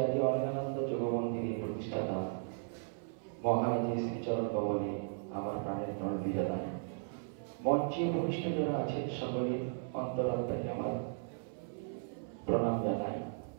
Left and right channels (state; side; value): silent; left; 54 dB below the other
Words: অরণ্যানন্দ যোগ মন্দিরের প্রতিষ্ঠাতা মহারাজের শ্রীচরণ কমলে আমার প্রাণের প্রণতি জানাই। মঞ্চে ভূমিষ্ঠ যারা আছেন সকলের অন্তরাত্মাকে আমার প্রণাম জানাই।